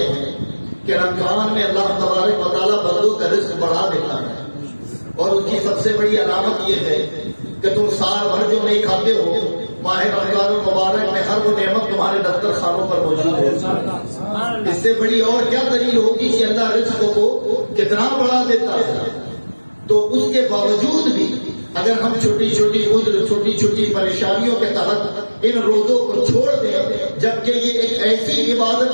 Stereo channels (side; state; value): both; inverted; correlation -1.00